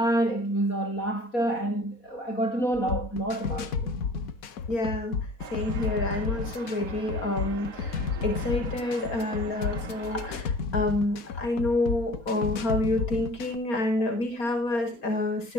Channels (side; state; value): right; late; 4.1 ms